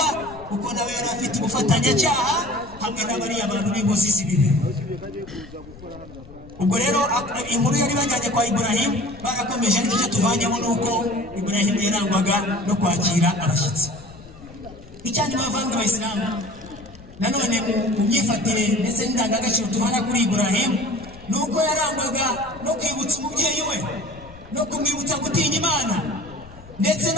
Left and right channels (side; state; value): left; noise; rumble, 20 dB below the sound